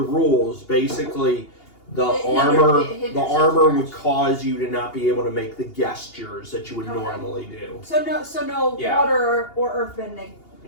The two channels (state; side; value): late; right; 2.8 ms